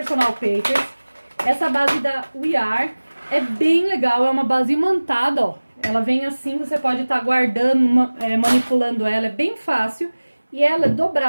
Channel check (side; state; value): both; inverted; correlation -1.00